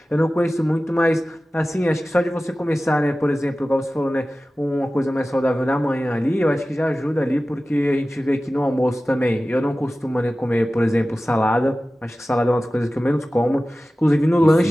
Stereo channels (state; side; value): normal; both; correlation 0.96